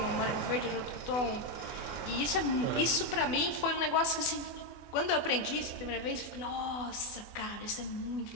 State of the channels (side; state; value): right; late; 24 ms